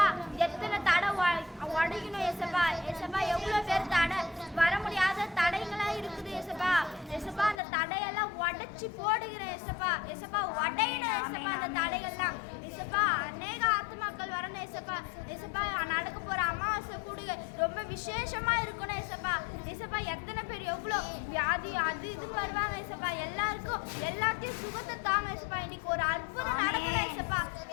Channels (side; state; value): right; drops out; at 7.6 s